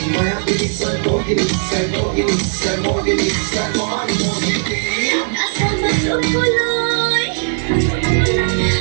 Maya bisa Mohini, say Mohini, say Mohini, say Mon Mohini. Nasa masukuloy,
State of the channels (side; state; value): left; silent; digital silence